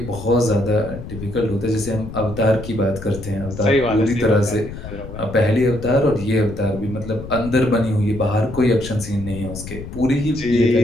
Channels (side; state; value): left; noise; rumble, 11 dB below the sound